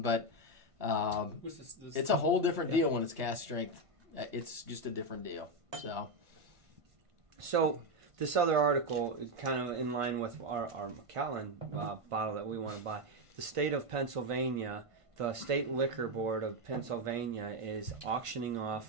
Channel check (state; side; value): late; left; 1.5 ms